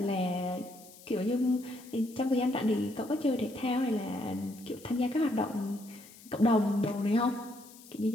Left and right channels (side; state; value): left; noise; hiss, 21 dB below the sound